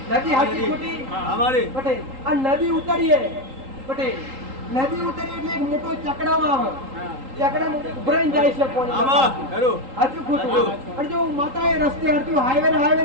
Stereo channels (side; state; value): left; late; 3.8 ms